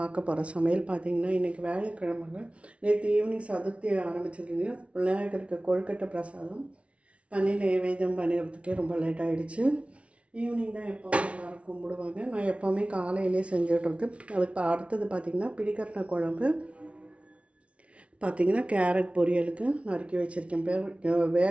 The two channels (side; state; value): left; late; 0.062 ms